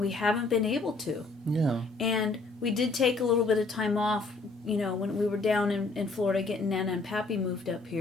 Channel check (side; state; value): right; quieter; 3.6 dB